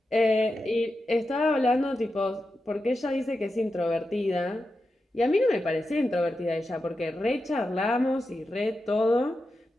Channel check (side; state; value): both; normal; correlation 0.90